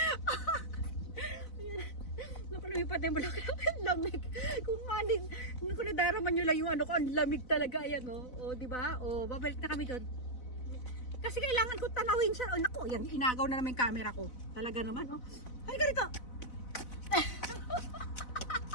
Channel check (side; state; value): right; late; 4.0 ms